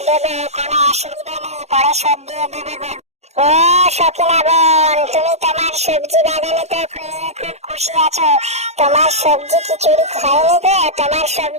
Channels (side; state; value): left; late; 0.32 ms